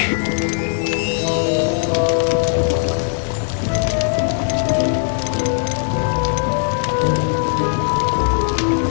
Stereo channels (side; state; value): right; silent; digital silence